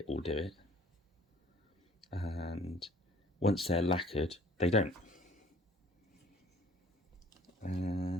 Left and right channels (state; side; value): normal; both; correlation 0.54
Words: will do it. And once they're lacquered, they don't.